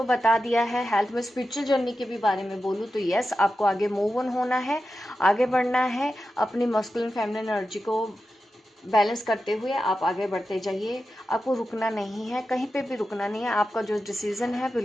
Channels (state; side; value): normal; both; correlation 0.91